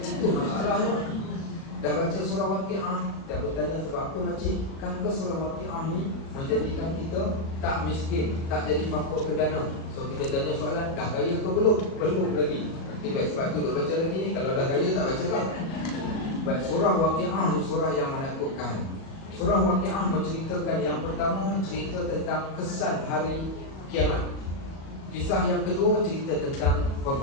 Itu masalahnya. Dah baca surah Waqi'ah, dah bertanya sebab apa makcik? Kan ke surah Waqi'ah ni menjadikan kita tak miskin, tak jadi pokok ke dana. So kita tanya soalan, dah kaya ke belum? Belum lagi. Baik, sebab tu duk baca lagi ni. Kalau dah kaya tak baca kan? Baik, surah Waqi'ah ni surah yang menakutkan. Surah Waqi'ah menceritakan yang pertama, cerita tentang kesan hari kiamat. Kisah yang kedua, cerita tentang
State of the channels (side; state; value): right; late; 37 ms